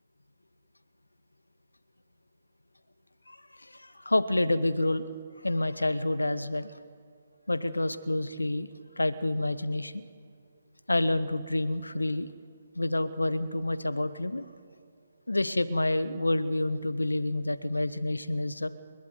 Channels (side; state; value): both; inverted; correlation -0.97